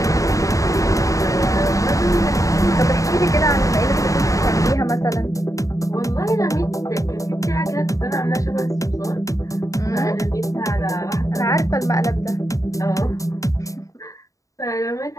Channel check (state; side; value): late; right; 0.16 ms